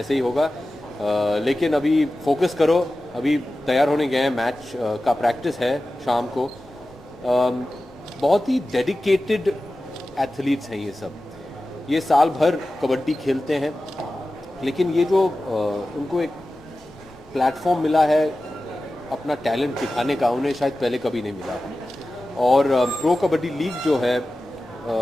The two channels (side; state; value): both; normal; correlation 0.95